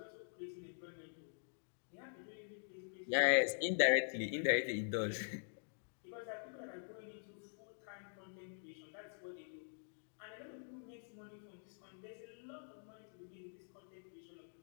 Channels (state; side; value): silent; right; digital silence